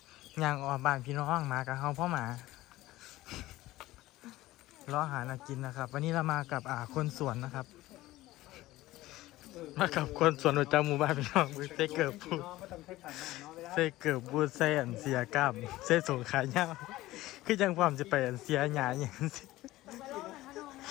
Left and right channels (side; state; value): right; quieter; 17.1 dB